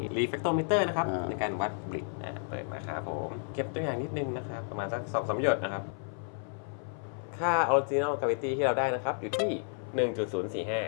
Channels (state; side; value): silent; right; 55 dB below the other